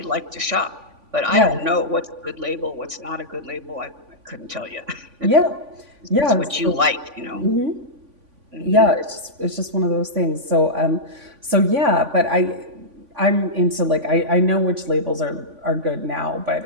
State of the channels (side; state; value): left; late; 3.5 ms